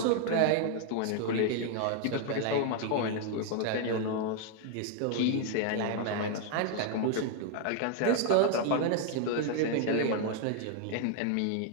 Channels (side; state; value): both; different; correlation 0.00